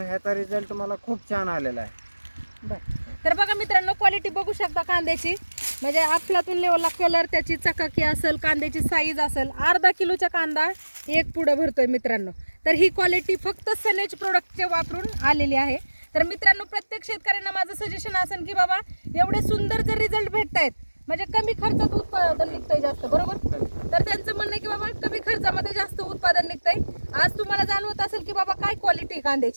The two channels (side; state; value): both; inverted; correlation -1.00